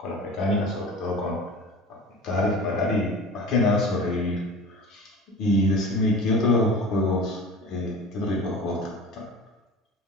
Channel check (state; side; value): normal; both; correlation 0.37